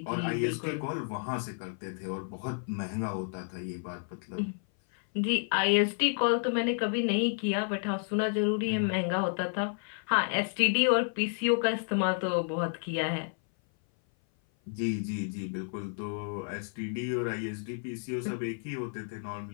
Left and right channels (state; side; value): silent; right; 56 dB below the other